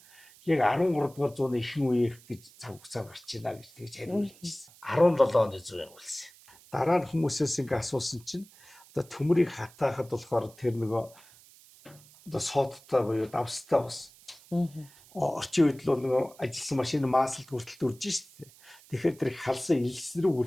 яг 13 дугаар зууны ихэнх үеийнх гэж цаг хугацаа гарч ийна гэж тэгж хариулжсэн. 17 оны зуун явуулсан. Дараа нь хүмүүсээс ингээ асуусан чинь одоо төмрийг хатаахад болохоор тэр нөгөө одоо сооттой буюу давстай бас. Орчин үед л нөгөө ажилласан машины маасалд хүртэл дүрж штэ. Тэгэхээр тэр халсан элс рүү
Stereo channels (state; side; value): noise; right; hiss, 24 dB below the sound